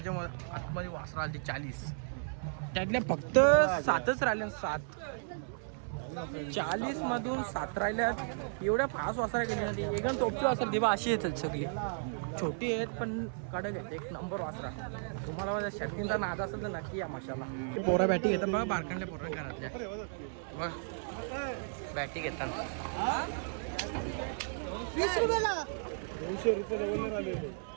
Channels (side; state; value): left; silent; 55 dB below the other